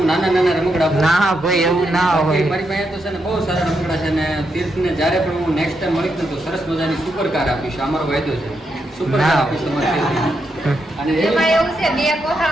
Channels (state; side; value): normal; both; correlation 0.82